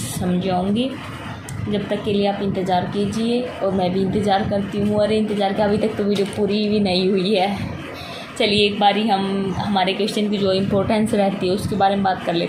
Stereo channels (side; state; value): both; identical; correlation 1.00